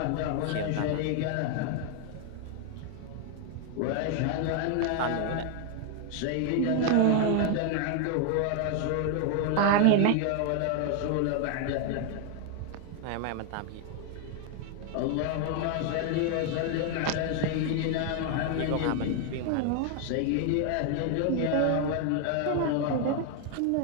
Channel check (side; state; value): both; different; correlation 0.00